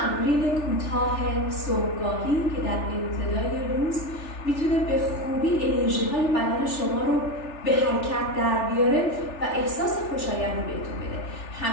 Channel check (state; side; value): late; right; 3.4 ms